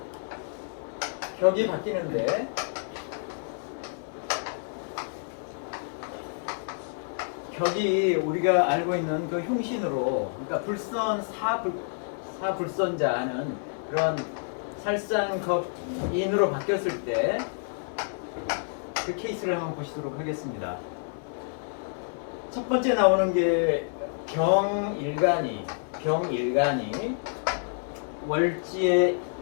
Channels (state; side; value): silent; right; 59 dB below the other